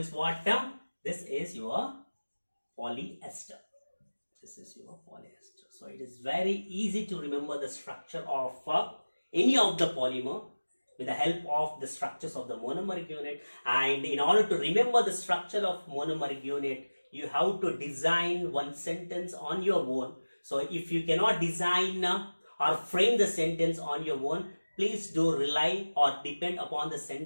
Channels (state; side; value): inverted; both; correlation -1.00